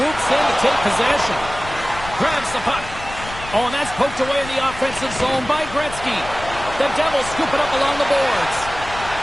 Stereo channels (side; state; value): left; noise; rumble, 13 dB below the sound